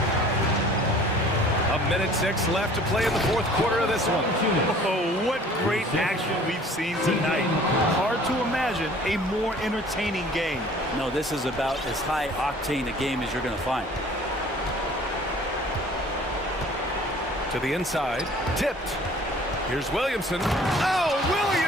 1:06 left to play in the fourth quarter of this one. Oh, what great action we've seen tonight. Hard to imagine a more entertaining game. No, this is about as high octane a game as you're going to find. To the inside. Tipped. Here's Williamson. Oh,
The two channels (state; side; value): normal; both; correlation 0.50